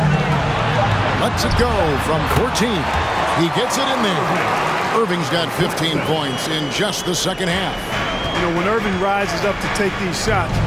Lets it go from 14. He gets it in there. Irving's got 15 points in just the second half. You know, when Irving rises up to take these shots,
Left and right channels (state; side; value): identical; both; correlation 1.00